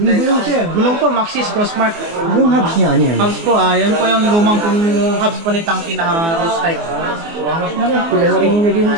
gulong, sir. Gulong po, Maxxis Crossmark. Yung hubs niya, ano yan? Hubs po, yan po yung lumang pong hubs po ni Tangke na rose type. Kulay na rin yung naging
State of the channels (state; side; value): late; left; 24 ms